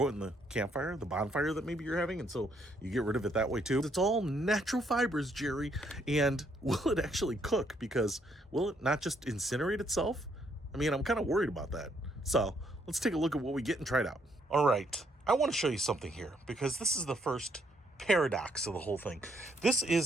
it in the campfire, the bonfire that maybe you're having, and so you get rid of it that way too? It's all natural fibers, Jerry, and will it actually cook? Because will it not just incinerate itself? I mean, I'm kind of worried about that. So let's take a look at what we get and try it out. All right. I want to show you something here because this is the first paradox of the whole thing. This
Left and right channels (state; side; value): normal; both; correlation 0.71